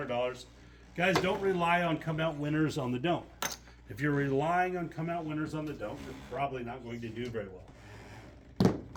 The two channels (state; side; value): identical; both; correlation 1.00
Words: Guys, don't rely on come out winners on the don't. If you're relying on come out winners on the don't, you're probably not going to do very well.